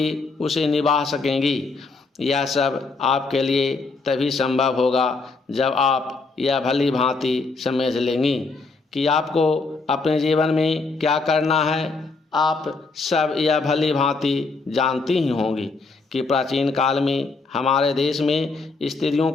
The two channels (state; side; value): quieter; right; 3.9 dB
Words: उसे निभा सकेंगी। यह सब आपके लिए तभी संभव होगा जब आप यह भली भांति समझ लेंगी कि आपको अपने जीवन में क्या करना है। आप सब यह भली भांति जानती ही होंगी कि प्राचीन काल में हमारे देश में स्त्रियों